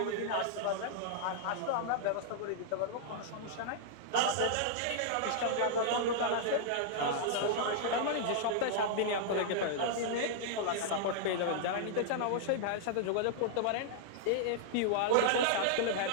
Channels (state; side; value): different; both; correlation -0.01